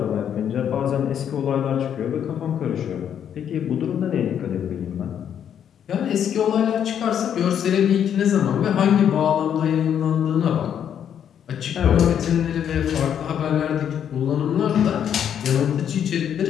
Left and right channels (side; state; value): right; quieter; 9.0 dB